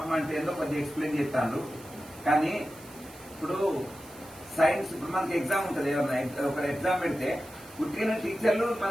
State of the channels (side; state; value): right; noise; hiss, 20 dB below the sound